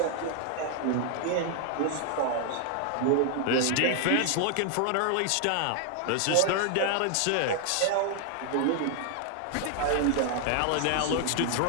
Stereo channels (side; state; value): both; different; correlation 0.00